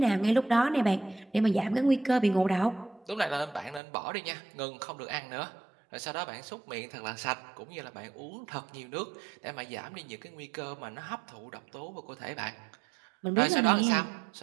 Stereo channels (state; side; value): drops out; left; at 3.8 s